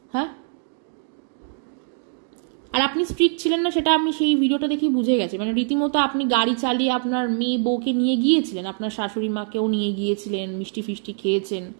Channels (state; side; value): silent; left; 63 dB below the other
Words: হ্যাঁ, আর আপনি স্ট্রিক্ট ছিলেন না সেটা আমি সেই ভিডিওটা দেখেই বুঝে গেছি। মানে রীতিমতো আপনি গাড়ি চালিয়ে আপনার মেয়ে বউকে নিয়ে গিয়েছিলেন, আপনার শাশুড়ি মাকেও নিয়ে গিয়েছিলেন, মিষ্টি ফিষ্টি খেয়েছেন,